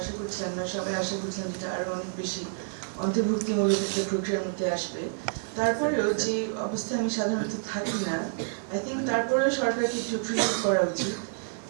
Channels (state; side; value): silent; left; digital silence